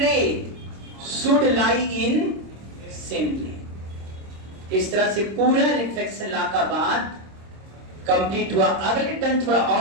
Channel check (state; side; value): late; left; 26 ms